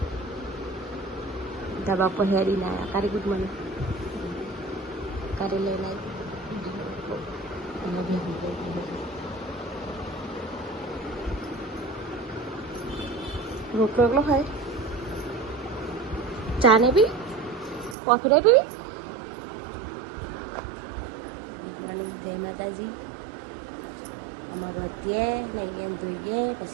ધાબા પર હેરી ના આવ્યા. કારી ગુડ મોર્નિંગ કારી લઈને આવી રોટલો એકલો ખાય. ચા ને પી કોફી ને પીવી. ગુડ મોર્નિંગ, જય માતાજી. અમારું અત્યારે નહીં ધોઈએ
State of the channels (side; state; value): left; drops out; at 17.9 s